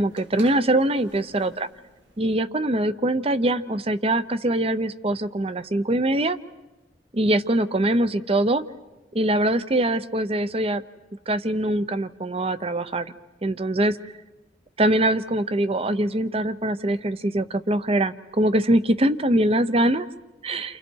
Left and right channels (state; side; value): normal; both; correlation 0.54